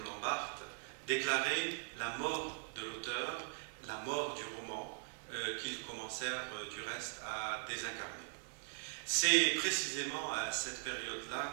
Barthes, déclaraient la mort de l'auteur, la mort du roman, qu'ils commencèrent du reste à désincarner. C'est précisément à cette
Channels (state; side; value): silent; left; 51 dB below the other